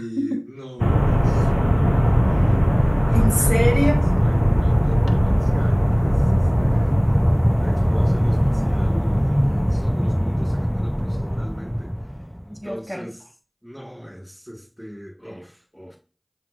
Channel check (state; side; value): identical; both; correlation 1.00